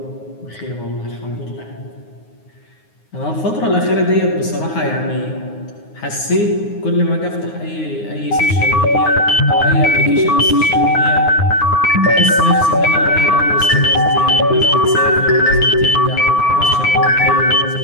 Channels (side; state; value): right; late; 9.6 ms